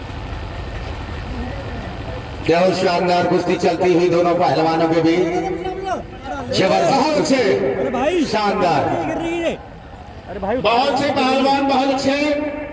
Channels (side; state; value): both; identical; correlation 1.00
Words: बहुत शानदार कुश्ती चलती हुई दोनों पहलवानों के बीच। जबरदस्त अच्छे, शानदार। बहुत से पहलवान बहुत अच्छे,